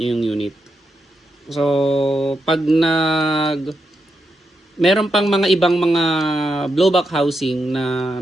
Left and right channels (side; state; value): both; normal; correlation 0.84